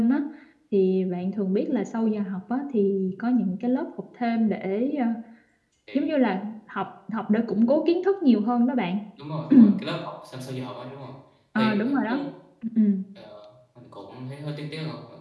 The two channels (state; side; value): identical; both; correlation 1.00